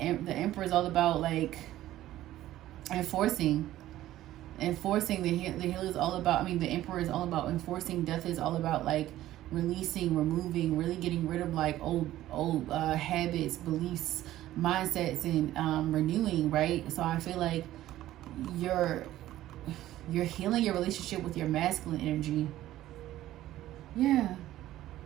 is all about like enforcing. The healer is all about, the Emperor is all about enforcing. Death is all about like releasing, removing, really getting rid of like old habits, beliefs, mindsets, and renewing, right? So I feel like you're healing your relationship with your masculine energy. Yeah.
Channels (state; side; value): quieter; left; 14.3 dB